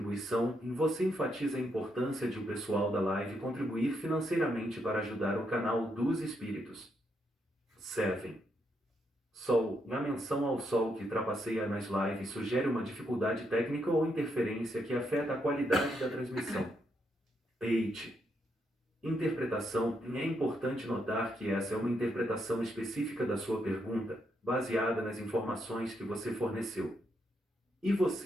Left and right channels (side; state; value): both; normal; correlation 0.79